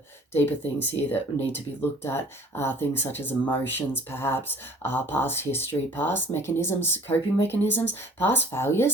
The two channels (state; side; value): normal; both; correlation 0.51